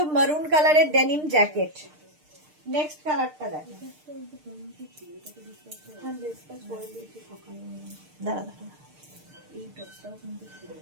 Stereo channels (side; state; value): left; late; 6.6 ms